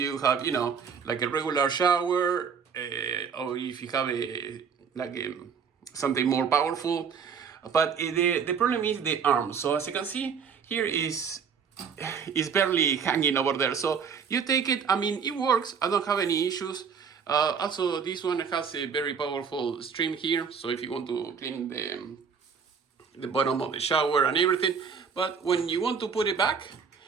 have, like a regular shower, or if you have something more powerful. But the problem is the arm. So as you can see, here is barely hanging over there. So you take it, it works. I don't have any issues. Also, this one has a very powerful stream here. So if you want to clean the bottom of the shower and everything. But when you want to put it back,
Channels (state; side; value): quieter; left; 6.4 dB